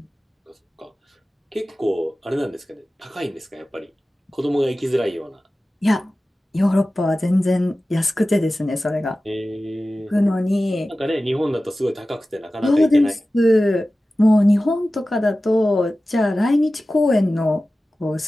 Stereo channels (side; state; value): both; normal; correlation 0.95